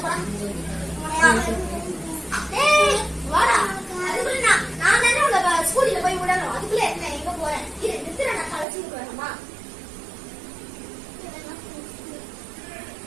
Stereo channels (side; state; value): left; drops out; at 8.7 s